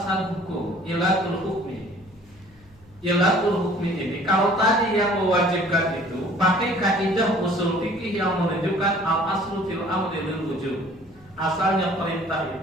hukum, ilatul hukmi. Ilatul hukmi ini kalau tadi yang mewajibkan itu pakai kaidah usul fikih yang menunjukkan al-aslu fil amri lil wujub. Asalnya perintah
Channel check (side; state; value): left; noise; hum, 28 dB below the sound